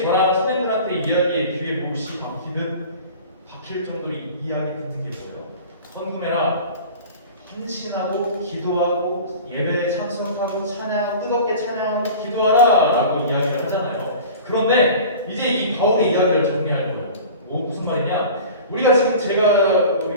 저랑 선생님들한테 이야기의 귀에 몹시 박힐 정도로 이야기 듣는 게 뭐예요? 헌금해라, 헌신하고 기도하고 예배에 참석하고 찬양하고 뜨겁게 찬양하고 기도하라 라고 이야기를 하잖아요. 그런데 이제 이 바울의 이야기를 정리할 거예요. 무슨 말이냐, 우리가 지금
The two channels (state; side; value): inverted; both; correlation -0.39